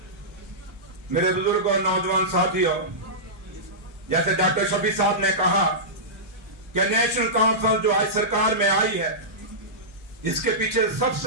मेरे बुजुर्ग और नौजवान साथियों, जैसे डॉक्टर शफी साहब ने कहा कि नेशनल कॉन्फ्रेंस जो आज सरकार में आई है, इसके पीछे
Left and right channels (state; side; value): normal; both; correlation -0.15